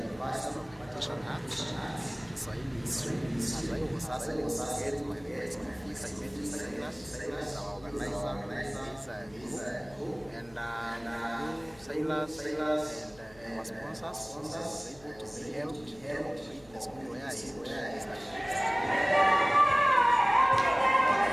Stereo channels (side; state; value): left; noise; hum, 25 dB below the sound